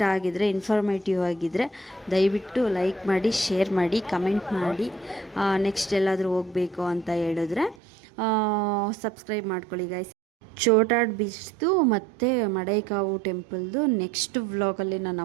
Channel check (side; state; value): left; drops out; at 7.8 s